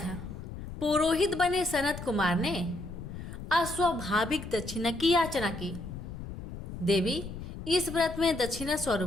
पुरोहित बने सनत कुमार ने अस्वाभाविक दक्षिणा की याचना की। देवी इस व्रत में दक्षिणा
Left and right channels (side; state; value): left; noise; rumble, 10 dB below the sound